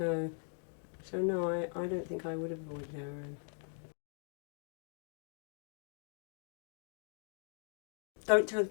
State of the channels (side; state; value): right; silent; 51 dB below the other